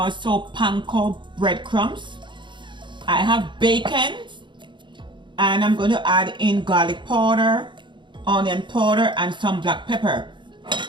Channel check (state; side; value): late; left; 0.23 ms